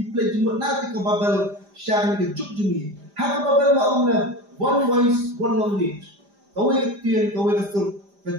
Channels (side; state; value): left; late; 5.0 ms